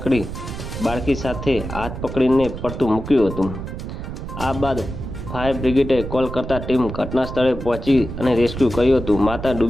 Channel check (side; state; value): right; noise; rumble, 8 dB below the sound